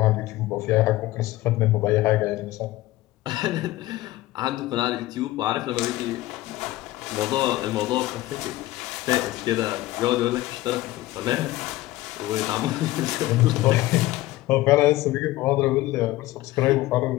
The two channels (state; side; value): quieter; right; 17.2 dB